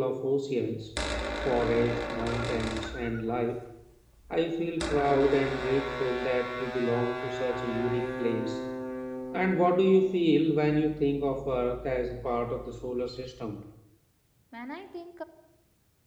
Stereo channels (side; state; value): both; identical; correlation 1.00